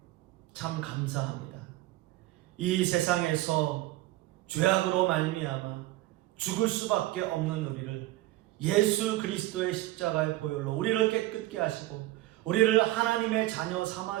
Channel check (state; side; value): quieter; left; 16.8 dB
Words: 참 감사합니다. 이 세상에서 죄악으로 말미암아 죽을 수밖에 없는 우리를 예수 그리스도의 십자가의 보혈로 우리를 깨끗게 하시고 우리를 하나님의 자녀